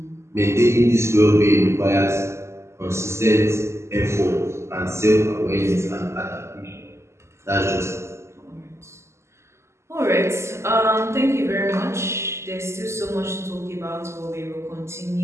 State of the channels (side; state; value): left; late; 0.13 ms